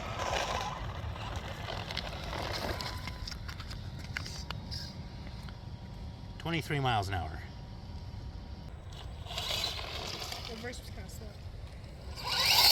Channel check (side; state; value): both; identical; correlation 1.00